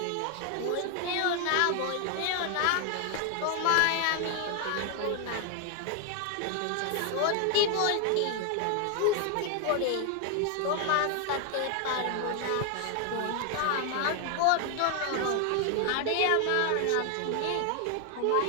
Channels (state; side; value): different; both; correlation 0.00